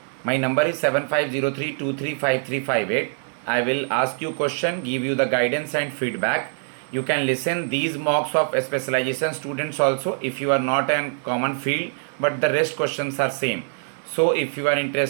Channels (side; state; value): left; silent; digital silence